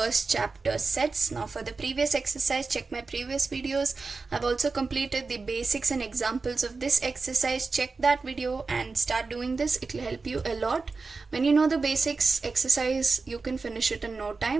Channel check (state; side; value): quieter; left; 4.2 dB